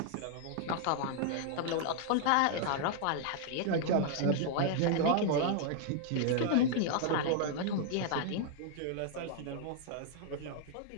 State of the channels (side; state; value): both; different; correlation 0.00